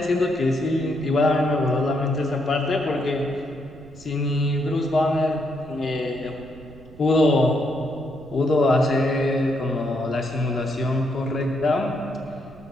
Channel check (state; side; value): noise; right; rumble, 20 dB below the sound